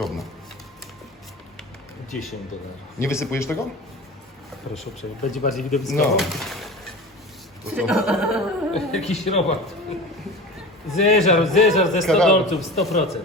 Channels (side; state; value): both; normal; correlation 0.34